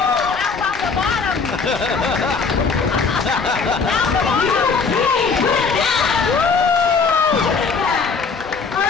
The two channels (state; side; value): quieter; right; 4.9 dB